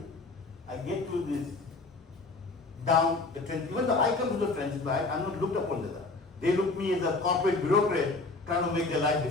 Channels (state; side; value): quieter; right; 3.5 dB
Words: I get to this down the trench. Even though I come to the trenches, but I'm not looked upon that. They look me as a corporate bureaucrat trying to make their life